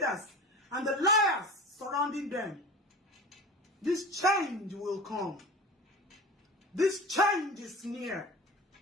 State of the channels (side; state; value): both; normal; correlation 0.34